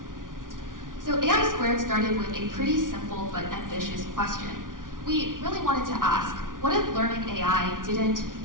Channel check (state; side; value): late; left; 0.89 ms